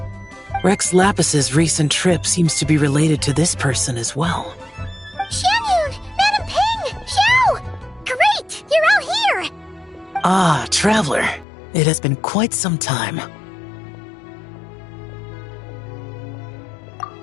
Rex Lapis's recent trip seems to be related to this person as well. Xianyun! Madam Ping! Xiao! Great! You're all here! Ah, Traveler. It has been quite some time.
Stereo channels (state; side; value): drops out; right; at 11.5 s